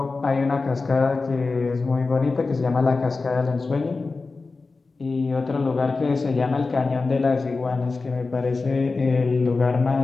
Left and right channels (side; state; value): right; quieter; 3.9 dB